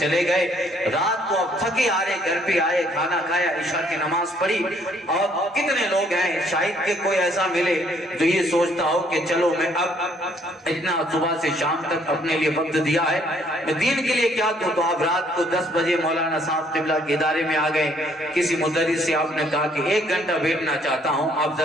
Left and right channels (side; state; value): both; normal; correlation 0.65